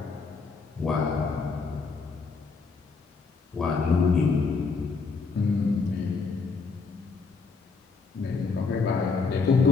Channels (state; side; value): quieter; right; 4.6 dB